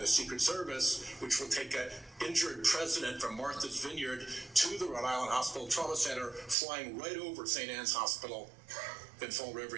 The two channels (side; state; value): left; drops out; at 6.6 s